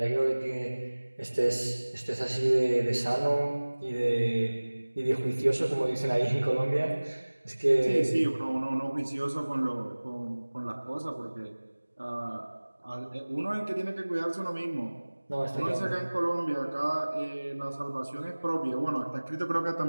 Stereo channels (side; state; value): both; inverted; correlation -1.00